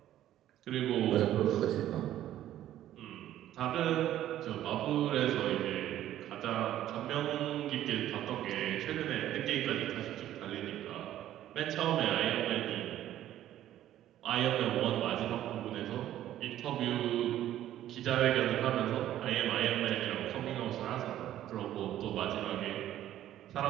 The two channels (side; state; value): left; quieter; 12.6 dB